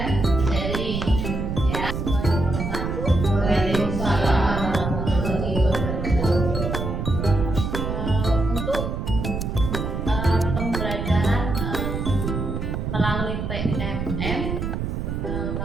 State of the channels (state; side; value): noise; right; rumble, 3 dB below the sound